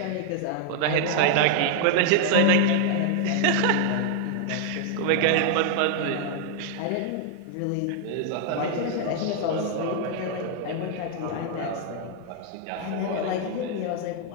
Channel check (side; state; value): both; different; correlation 0.00